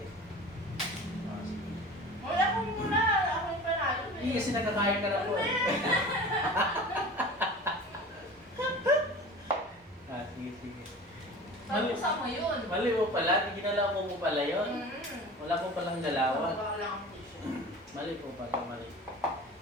Sige. Wala ko muna. Ako yung panalo. Hindi kasi nakakain ka na po. Sige, sige. Pag-usa mo yun. Mali mo pala. Ginalaw mo pala yun. Wala po palang dalawan. Wala lang ang tissue. Mali po pala, mali.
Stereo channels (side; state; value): both; normal; correlation 0.38